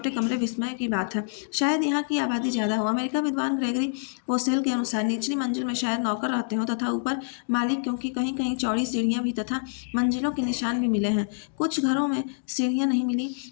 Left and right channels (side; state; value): right; silent; digital silence